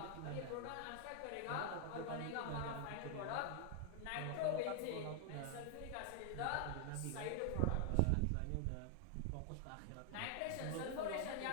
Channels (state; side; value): different; both; correlation 0.00